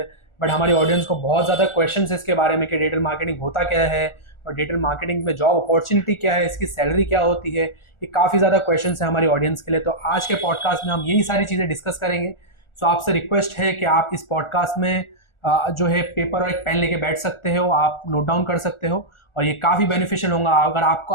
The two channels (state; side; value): late; right; 1.4 ms